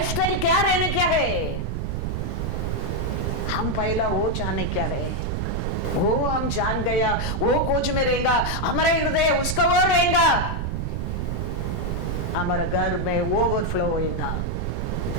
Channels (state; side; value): noise; right; rumble, 2 dB below the sound